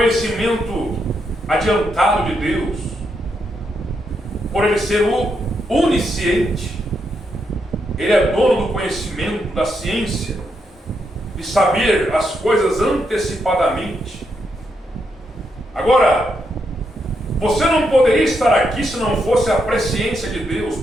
adiantado de Deus. Por ele ser o onisciente. Ele é dono do conhecimento, da ciência, de saber as coisas antecipadamente. Agora, você não poderia estar aqui se não fosse a presciência de Deus,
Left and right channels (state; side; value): normal; both; correlation 0.80